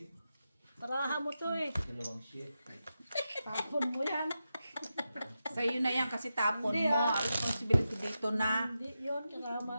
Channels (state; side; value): inverted; both; correlation -0.89